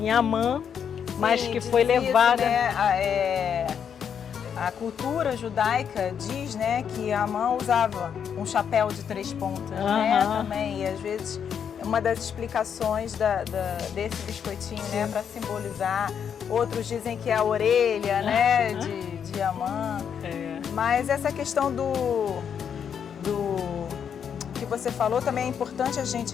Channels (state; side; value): quieter; right; 7.8 dB